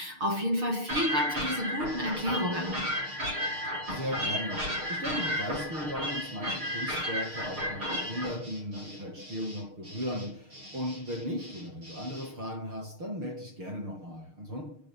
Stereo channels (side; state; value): left; late; 6.5 ms